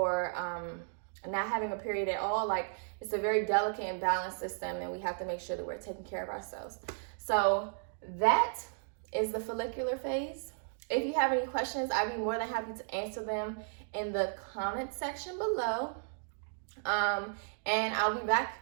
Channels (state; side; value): silent; left; digital silence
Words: not having a period at all. Like, it's a very delicate and balanced system, and we have to make sure that we're taking care of ourselves. So that is the follicular phase. If you have any questions, I'd be more than happy to answer them in the comment section below. And I'll be back